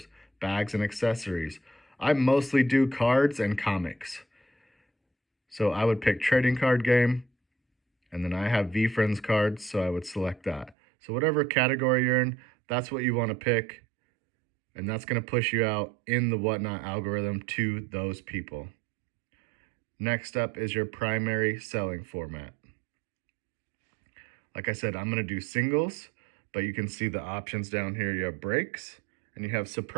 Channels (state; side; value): drops out; left; at 10.8 s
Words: bags and accessories. I mostly do cards and comics. So I would pick trading card game, and then I have VeeFriends cards, so I would select that. So whatever category you're in, that's what you want to pick, and that's going to push you out in the Whatnot algorithm to those people. Next up is your primary selling format. Like I said, I'm going to do singles, but you can see the options down here. You have breaks and you have